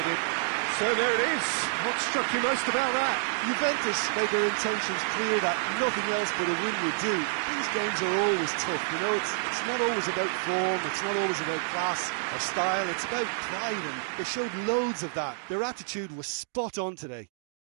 So there it is. What struck you most about that? Juventus made their intentions clear that nothing else but a win would do. These games are always tough, you know, it's not always about form, it's not always about class or style, it's about pride, and they showed loads of that. Their attitude was spot on today.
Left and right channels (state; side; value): silent; left; digital silence